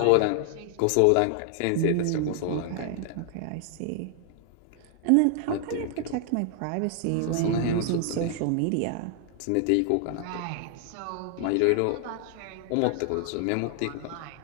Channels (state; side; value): different; both; correlation 0.00